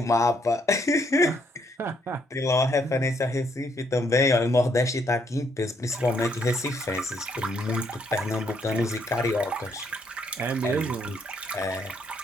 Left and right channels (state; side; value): normal; both; correlation 0.71